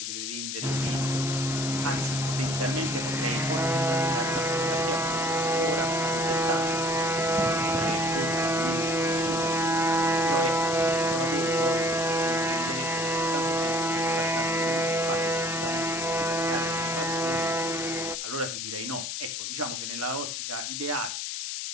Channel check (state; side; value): noise; left; hiss, 4 dB below the sound